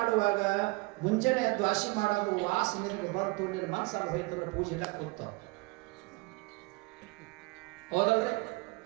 ಮುಂಜಾನೆ ದ್ವಾಸಿ ಮಾಡೋದು ವಾಸನೆ ಬಂತು, ನಿನ್ನ ಮನಸ್ಸಲ್ಲಿ ಹೋಯ್ತಂದ್ರ ಪೂಜೆ ಕೂತ. ಹೌದಲ್ರಿ?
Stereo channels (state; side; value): quieter; left; 26.0 dB